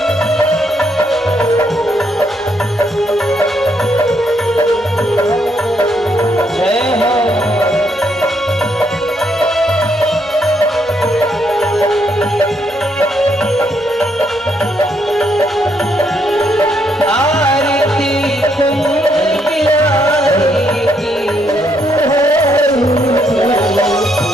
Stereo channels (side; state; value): both; normal; correlation 0.75